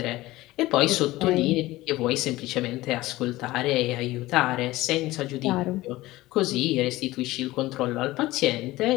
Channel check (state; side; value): quieter; right; 18.1 dB